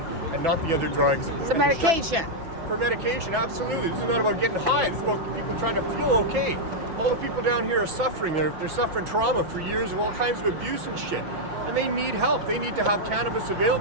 and not the other drugs. It's a medication. For medication, absolutely. This is not about getting high. This is about people trying to feel okay. All the people down here are suffering. They're suffering trauma for years of all kinds of abuse and shit. And they need help. They need to have cannabis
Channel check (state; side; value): late; left; 6.1 ms